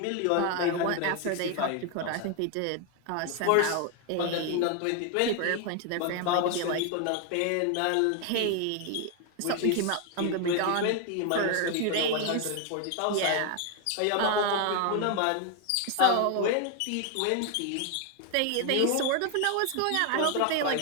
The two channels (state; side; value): different; both; correlation 0.01